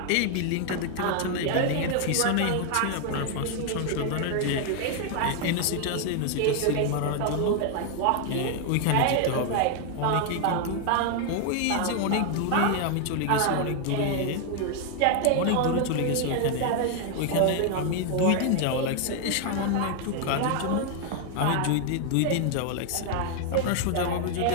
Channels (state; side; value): different; both; correlation 0.00